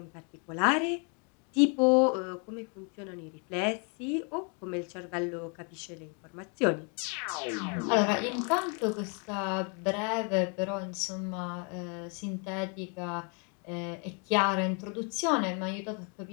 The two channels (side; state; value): right; quieter; 37.2 dB